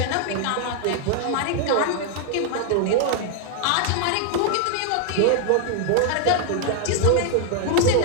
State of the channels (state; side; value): different; both; correlation 0.00